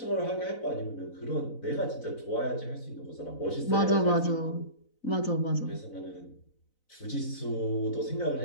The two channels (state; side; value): late; right; 4.0 ms